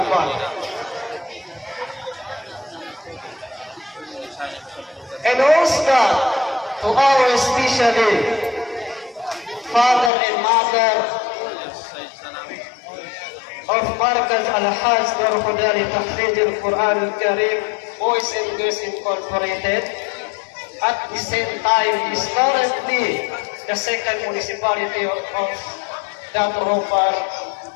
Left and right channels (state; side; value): drops out; right; at 10.1 s